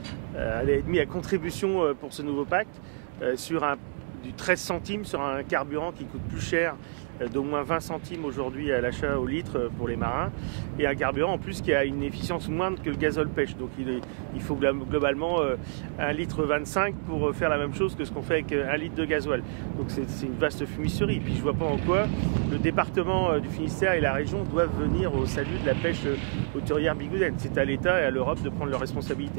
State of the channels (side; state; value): left; silent; digital silence